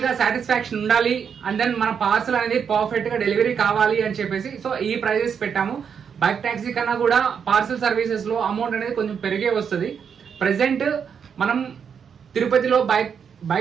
సాటిస్ఫాక్షన్ ఉండాలి, అండ్ దెన్ మన పార్సల్ అనేది పర్ఫెక్ట్ గా డెలివరీ కావాలి అని చెప్పేసి సో ఈ ప్రైజెస్ పెట్టాము. బైక్ టాక్సీ కన్నా కూడా పార్సల్ సర్వీసెస్ లో అమౌంట్ అనేది కొంచెం పెరిగే వస్తుంది. ప్రెసెంట్ మనం తిరుపతిలో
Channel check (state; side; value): quieter; left; 7.1 dB